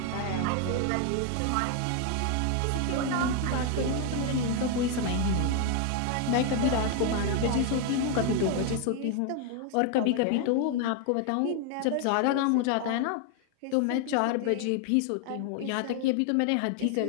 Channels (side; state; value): both; different; correlation 0.01